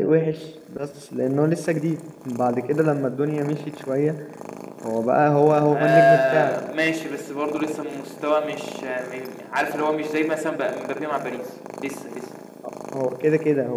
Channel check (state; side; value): identical; both; correlation 1.00